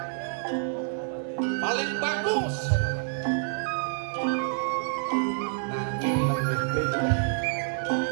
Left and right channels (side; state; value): left; silent; 60 dB below the other